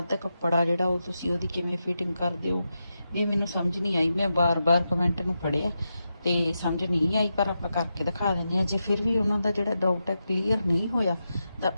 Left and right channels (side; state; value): both; inverted; correlation -0.88